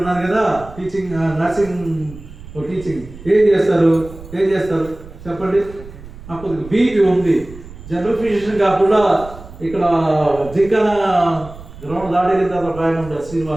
కదా, టీచింగ్, నర్సింగ్, టీచింగ్. ఏం చేస్తారు చెప్పండి. నాకు బీపీ ఉంది, జనరల్ ఫిజిషియన్ కాకుండా ఇక్కడ జింకన గ్రౌండ్ దాడేసిన తర్వాత ఒక ఆయన ఉంటారు,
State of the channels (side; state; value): right; noise; rumble, 16 dB below the sound